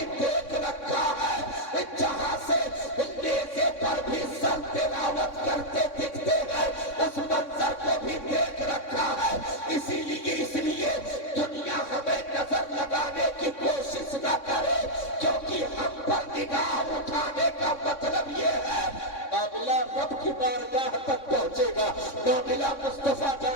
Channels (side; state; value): right; late; 3.6 ms